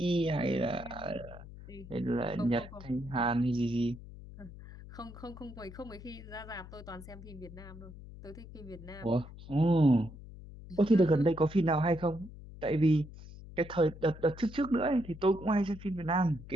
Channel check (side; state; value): left; noise; hum, 15 dB below the sound